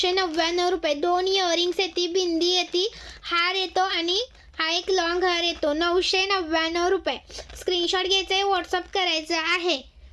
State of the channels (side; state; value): both; identical; correlation 1.00